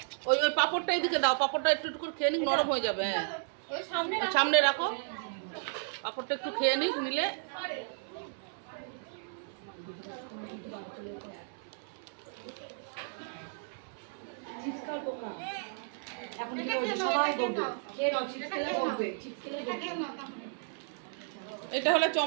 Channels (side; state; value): left; silent; 55 dB below the other